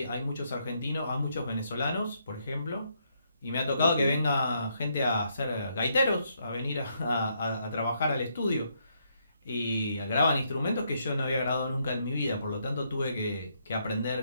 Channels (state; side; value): inverted; both; correlation -0.75